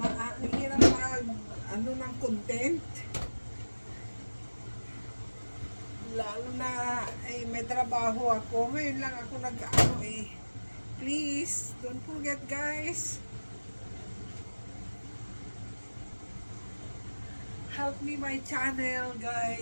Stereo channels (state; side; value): inverted; both; correlation -1.00